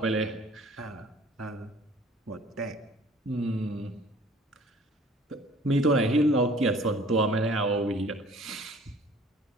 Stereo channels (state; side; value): normal; both; correlation 0.51